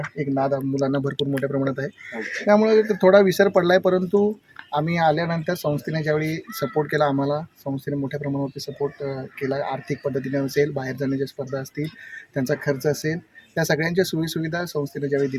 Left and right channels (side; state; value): both; identical; correlation 1.00